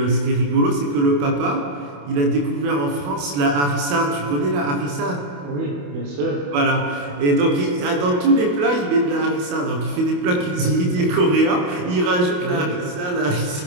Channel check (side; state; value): left; late; 28 ms